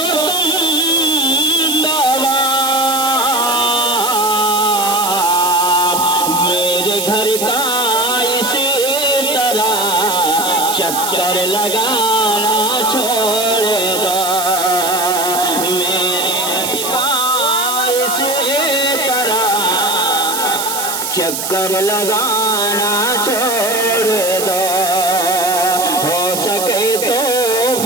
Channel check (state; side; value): noise; right; hiss, 4 dB below the sound